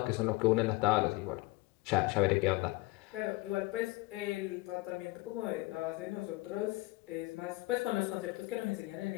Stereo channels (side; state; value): right; quieter; 21.9 dB